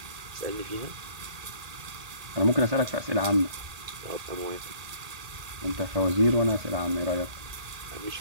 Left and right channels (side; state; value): left; late; 1.8 ms